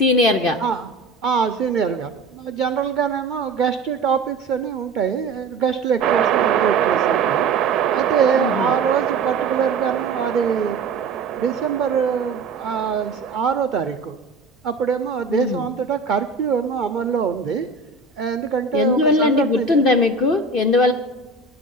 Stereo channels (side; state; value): left; quieter; 3.6 dB